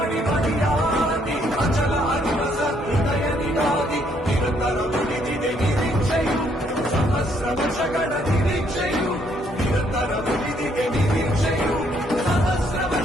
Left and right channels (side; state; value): both; normal; correlation 0.69